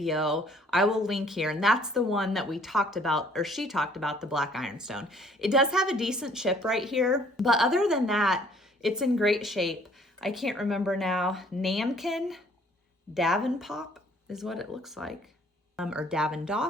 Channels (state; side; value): normal; both; correlation 0.59